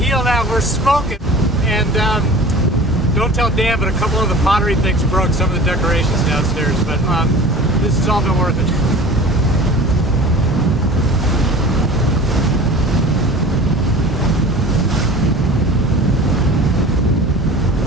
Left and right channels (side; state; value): both; normal; correlation 0.40